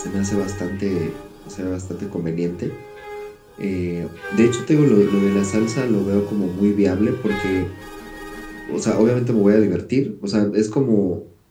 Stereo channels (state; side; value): identical; both; correlation 1.00